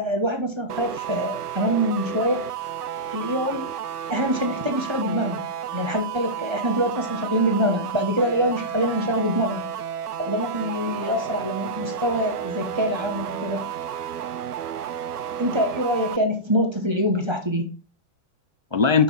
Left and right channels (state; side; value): late; left; 1.3 ms